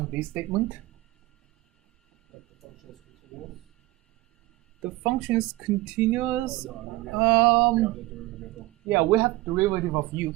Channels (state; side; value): quieter; left; 19.4 dB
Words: this statement? The function is continuous. Yeah, we have derivative of U